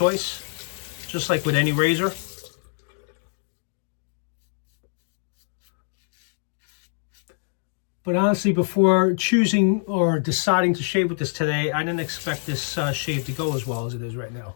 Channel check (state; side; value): silent; right; digital silence